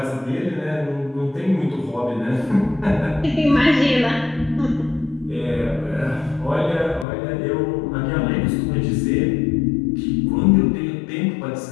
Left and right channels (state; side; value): drops out; right; at 7.1 s